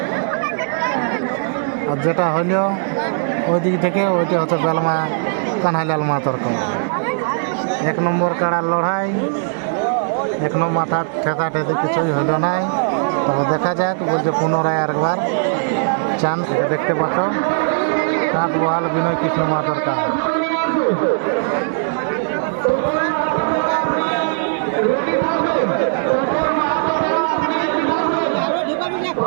আর যেটা হইল ওই দিক থেকে ওইটা হচ্ছে বেলমা কানাইলাল মাহাতোর কাড়া। 1 নম্বর কাড়ার লড়াই, 1 নম্বর মাথা ঠেকা ঠেকি কিছুই হইল নাই। তবে দেখা যাক, বলছে পুনরায় আরেকবার চান্স। দেখতে পাচ্ছ কাঁচ বহাল বিনয় কৃষ্ণ মাহাতোর কাড়া।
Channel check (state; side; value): silent; left; digital silence